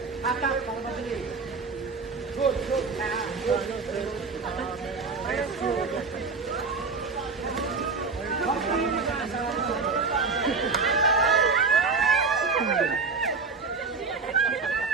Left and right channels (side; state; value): left; quieter; 4.5 dB